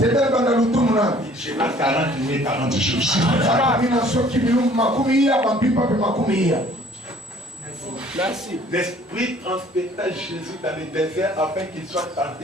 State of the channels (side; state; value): both; normal; correlation 0.55